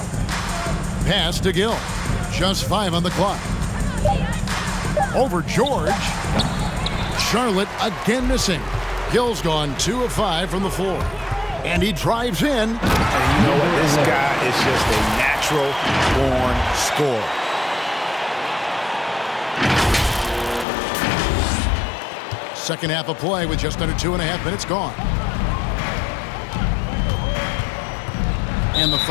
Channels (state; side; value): drops out; right; at 20.7 s